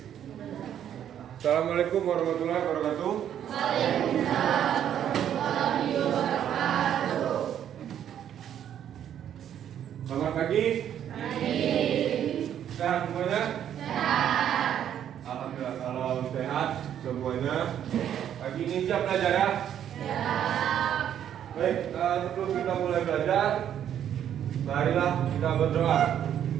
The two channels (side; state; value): left; quieter; 10.0 dB